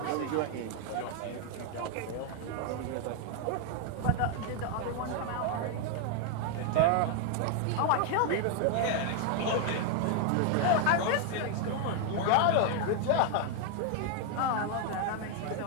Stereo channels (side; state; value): both; different; correlation 0.00